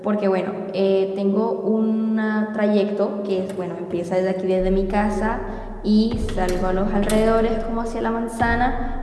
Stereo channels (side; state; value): both; identical; correlation 1.00